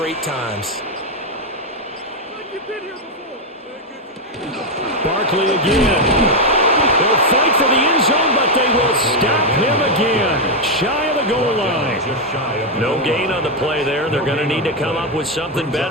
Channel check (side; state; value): both; normal; correlation 0.03